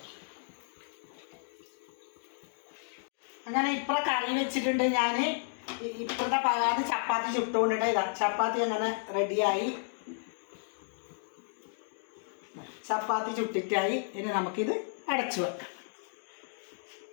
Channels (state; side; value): silent; right; digital silence